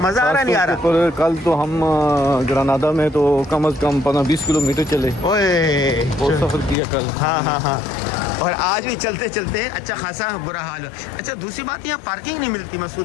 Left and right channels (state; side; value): drops out; right; at 6.8 s